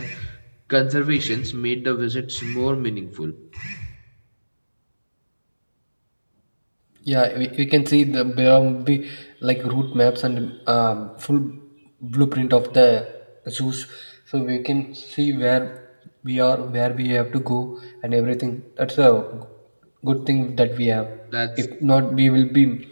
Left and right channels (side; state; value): both; inverted; correlation -1.00